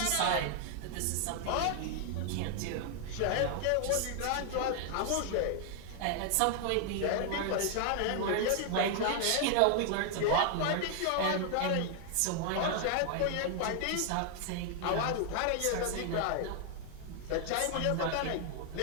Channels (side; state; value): both; different; correlation 0.00